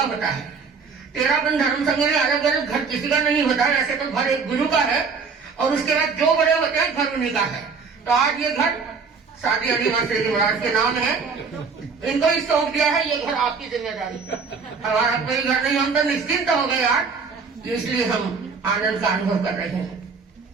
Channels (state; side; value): quieter; left; 5.2 dB